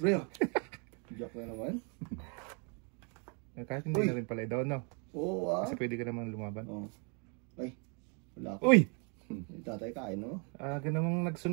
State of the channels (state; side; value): quieter; left; 36.6 dB